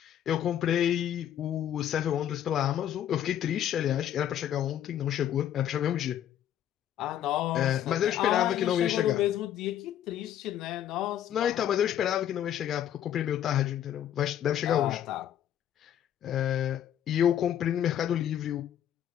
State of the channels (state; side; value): quieter; right; 10.7 dB